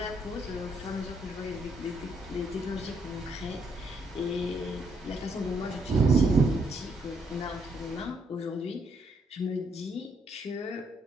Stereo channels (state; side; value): normal; both; correlation 0.73